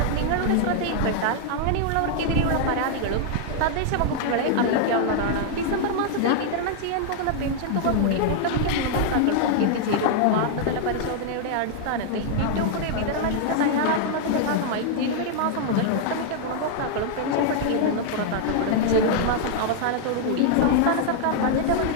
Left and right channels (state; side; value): different; both; correlation -0.01